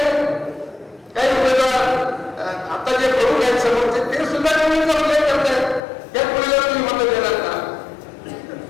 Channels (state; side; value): drops out; right; at 5.8 s